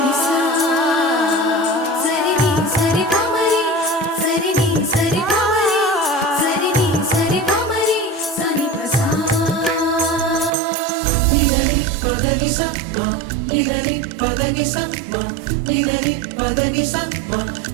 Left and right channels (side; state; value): left; drops out; at 10.5 s